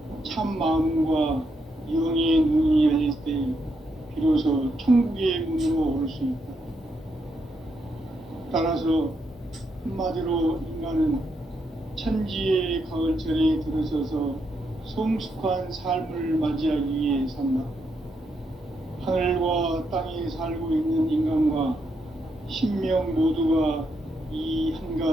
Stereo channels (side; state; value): both; normal; correlation 0.80